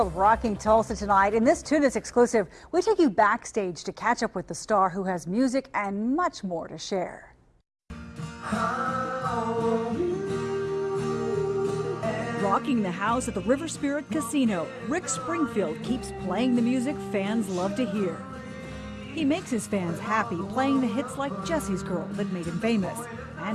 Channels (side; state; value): both; identical; correlation 1.00